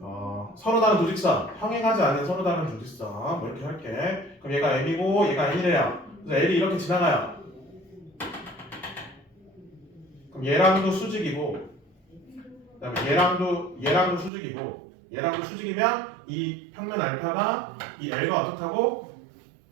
서로 다른 두 직선, 평행하지 않은 서로 다른 두 직선 뭐 이렇게 할게. 그럼 얘가 M이고 얘가 N이래요. 그래서 L이 이렇게 지나가요. 그럼 얘랑도 수직이고 그다음에 얘랑도 수직이고 얘랑도 수직이면 이 평면 알파가 이 L과 어떻다고?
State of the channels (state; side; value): drops out; left; at 14.3 s